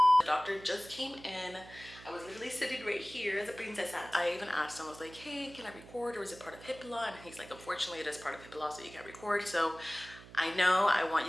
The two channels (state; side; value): noise; right; hum, 19 dB below the sound